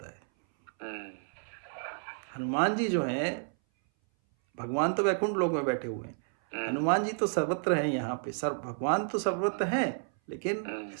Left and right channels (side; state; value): left; silent; 57 dB below the other